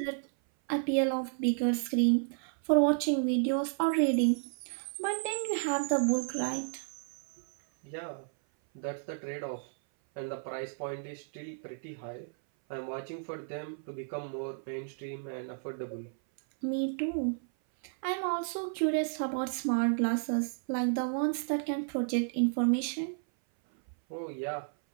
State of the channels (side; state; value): left; silent; 56 dB below the other